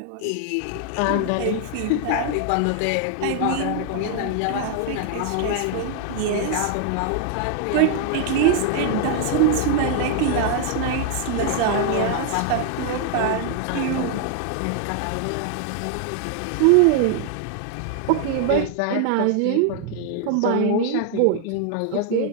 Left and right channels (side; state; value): both; different; correlation 0.00